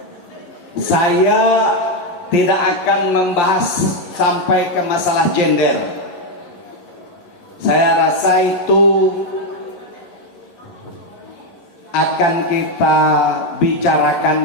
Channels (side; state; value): right; late; 11 ms